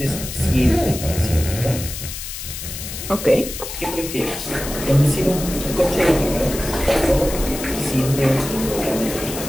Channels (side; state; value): left; noise; hiss, 8 dB below the sound